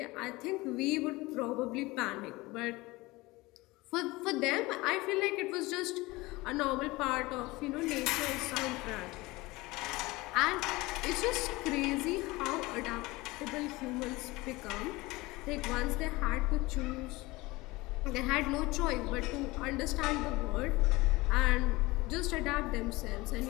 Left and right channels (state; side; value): quieter; right; 21.5 dB